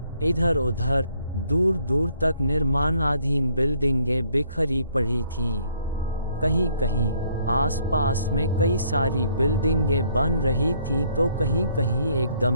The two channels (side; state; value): both; inverted; correlation -0.67